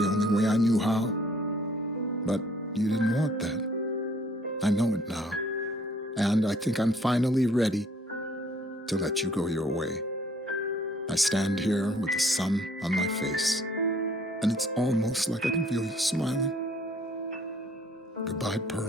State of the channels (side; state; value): both; normal; correlation 0.60